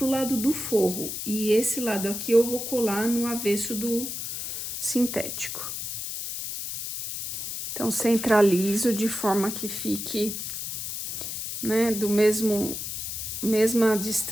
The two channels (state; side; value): noise; left; hiss, 5 dB below the sound